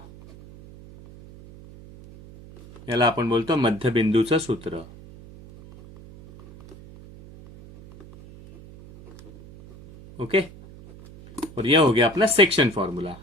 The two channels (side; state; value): right; noise; hum, 20 dB below the sound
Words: याला आपण बोलतो मध्यबिंदूचं सूत्र. ओके, और यह हो गया अपना सेक्शन फॉर्म्युला.